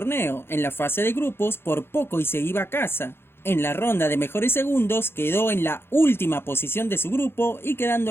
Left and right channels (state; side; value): late; right; 0.11 ms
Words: En la fase de grupos por poco y se iba a casa. En la ronda de mejores segundos quedó en la última posición de su grupo y quedando